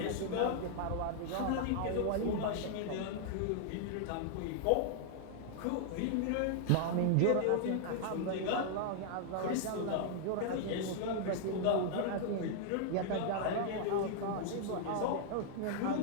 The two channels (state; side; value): different; both; correlation -0.01